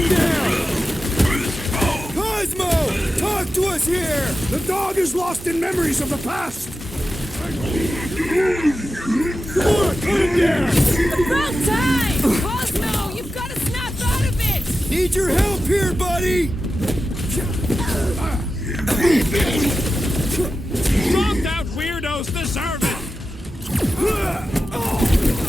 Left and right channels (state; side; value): normal; both; correlation 0.92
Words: down! Cosmo! Talk to us here! The dog is lost in memories of the past. Come on, put him down! About time! Cosmo, you've got to snap out of it! Need your help here, buddy! Dropped out weirdos deserve it!